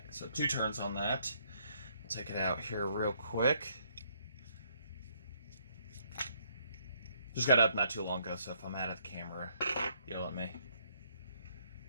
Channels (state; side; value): inverted; both; correlation -0.69